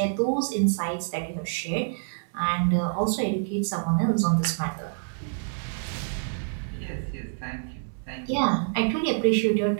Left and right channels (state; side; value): silent; left; 60 dB below the other